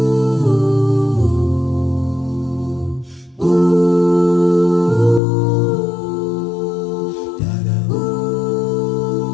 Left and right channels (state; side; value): drops out; right; at 5.2 s